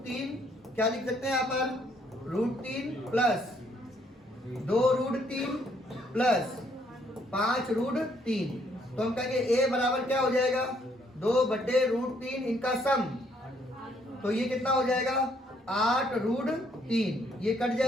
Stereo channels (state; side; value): normal; both; correlation 0.68